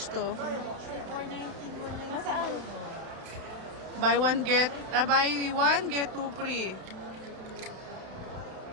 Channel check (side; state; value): left; late; 31 ms